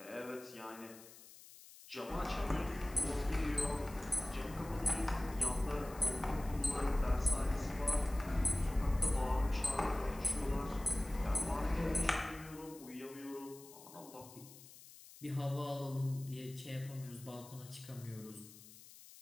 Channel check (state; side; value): noise; left; hiss, 19 dB below the sound